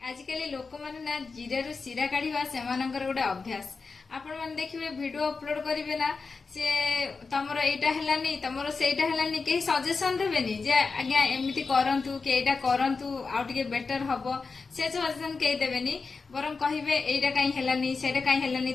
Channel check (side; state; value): right; quieter; 4.5 dB